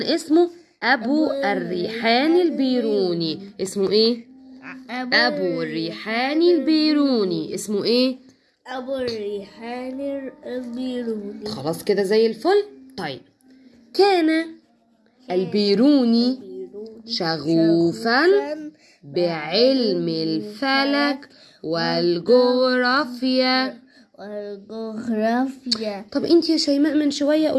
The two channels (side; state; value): both; identical; correlation 1.00